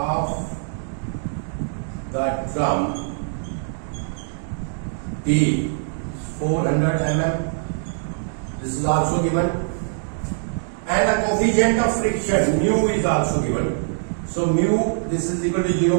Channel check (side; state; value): left; silent; digital silence